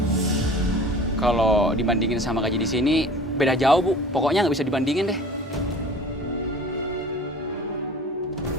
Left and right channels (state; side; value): normal; both; correlation 0.43